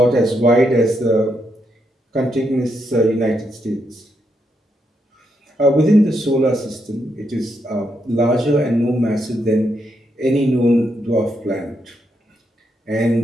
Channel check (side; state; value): both; normal; correlation 0.80